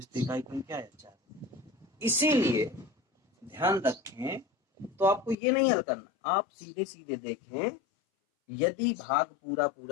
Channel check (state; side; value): drops out; right; at 5.4 s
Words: तो इकाई क्या है 4। इसीलिए ध्यान रखें, तो आपको ये नहीं हल करना, आप सीधे सीधे देखें, यदि भाग पूरा